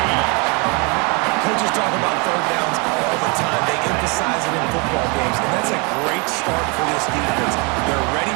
Coaches talk about third downs all the time. They emphasize it in football games, and that's a great start for this defense. They're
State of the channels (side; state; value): left; quieter; 31.1 dB